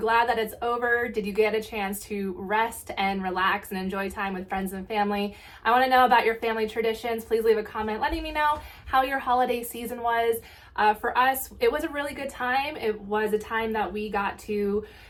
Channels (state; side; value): identical; both; correlation 1.00